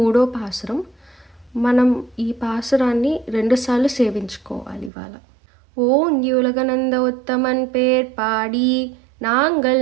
పాసురం. మనం ఈ పాసురాన్ని 2 సార్లు సేవించుకోవాలి ఇవాళ. ఓంగి ఉలగనంద ఉత్తమన్ పేర్ పాడి நாங்கள்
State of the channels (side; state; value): left; drops out; at 4.9 s